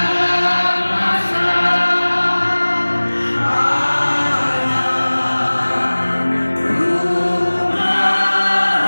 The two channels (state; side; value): inverted; both; correlation -1.00